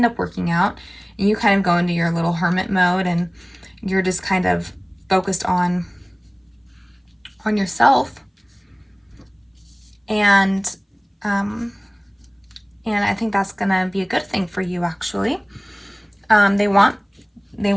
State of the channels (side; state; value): both; identical; correlation 1.00